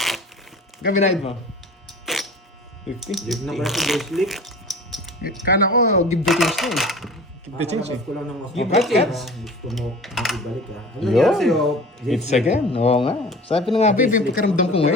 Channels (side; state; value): both; normal; correlation 0.40